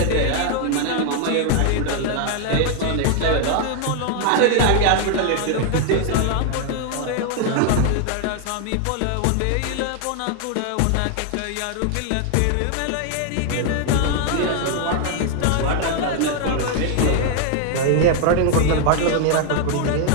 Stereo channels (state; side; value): different; both; correlation 0.00